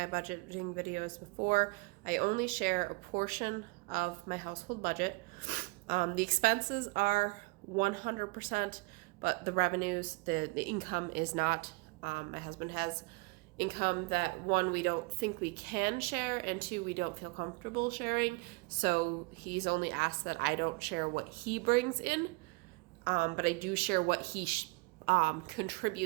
budgeting videos before, I only share a portion of my household budget. The expenses are 100%, but the revenues, the income is not. My husband has income that, one, we don't think we can share, and two, we don't feel comfortable sharing. So he's only asked that I don't share what he brings in, but I do share what he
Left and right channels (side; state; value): left; quieter; 27.3 dB